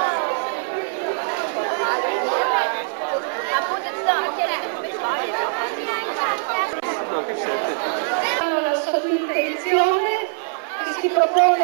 La sua intenzione che si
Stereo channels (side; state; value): left; silent; 64 dB below the other